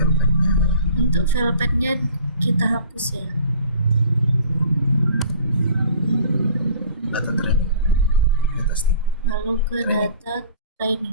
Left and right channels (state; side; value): inverted; both; correlation -0.46